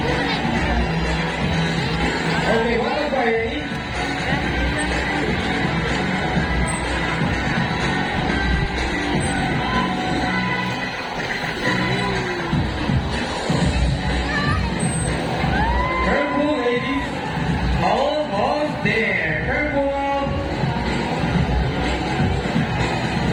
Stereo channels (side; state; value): both; identical; correlation 1.00